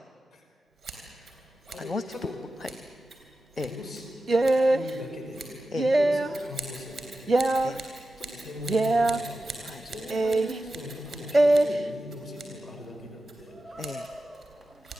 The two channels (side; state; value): both; normal; correlation 0.92